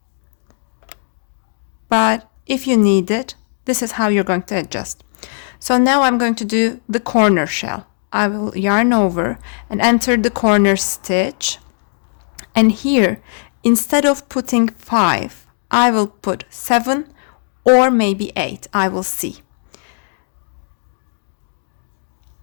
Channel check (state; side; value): silent; right; 65 dB below the other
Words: but if you need it, this is how you're going to adjust. So now I'm going to do the corner shell. I will yarn over and enter the corner stitch, and here instead of putting 5 I will put 7 or maybe 8. I will see.